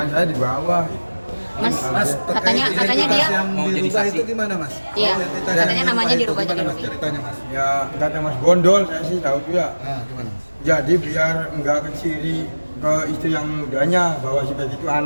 saya di bawah. Mas katanya dia yang mau jadi dirubah saksi. itu gimana Mas? Iya, Identitas katanya yang namanya dirubah itu jadi gimana, Mas? Robi. Ceritanya Mas. Ya kata Mas Gondol, saya sih tahu tuh ya. Nah, gimana Mas? Jadi biar nggak keciri ke istri yang mudanya bahwa si Peggy itu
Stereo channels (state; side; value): inverted; both; correlation -1.00